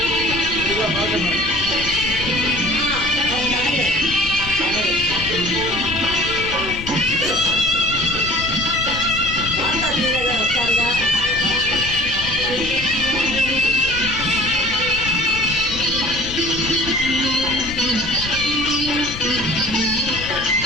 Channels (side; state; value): left; noise; rumble, 11 dB below the sound